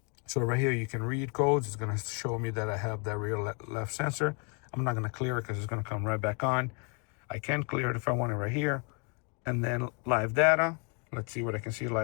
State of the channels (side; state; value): right; quieter; 35.9 dB